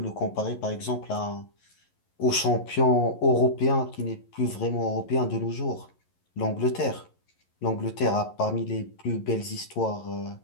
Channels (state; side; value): late; right; 11 ms